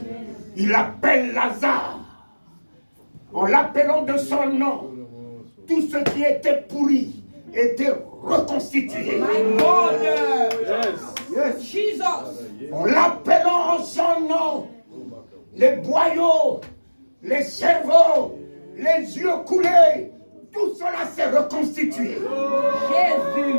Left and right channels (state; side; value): inverted; both; correlation -1.00